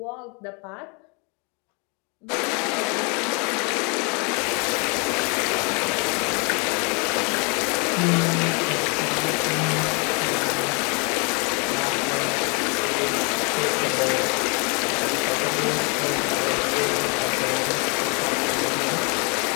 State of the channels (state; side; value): quieter; right; 33.4 dB